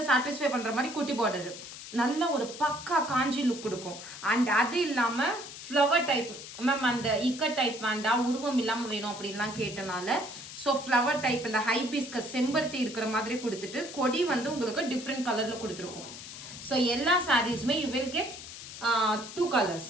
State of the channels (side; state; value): left; noise; hiss, 12 dB below the sound